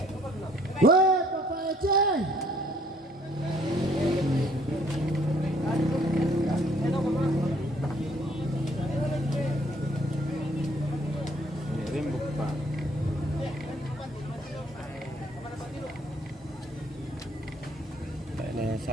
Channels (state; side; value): normal; both; correlation 0.61